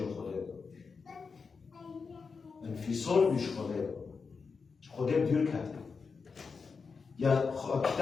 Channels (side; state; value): right; quieter; 5.1 dB